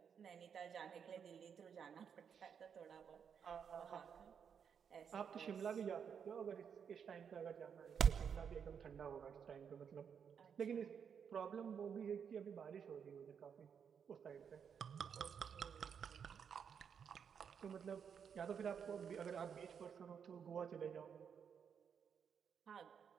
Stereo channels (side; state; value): left; quieter; 7.3 dB